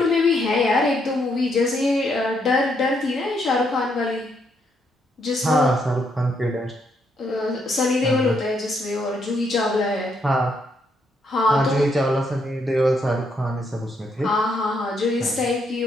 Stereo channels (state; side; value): normal; both; correlation 0.75